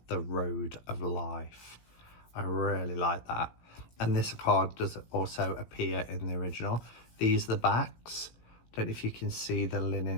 the road of life. I really like that. And this card does also appear in the original. These are the backs. Don't know if you can see the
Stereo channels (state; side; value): late; right; 17 ms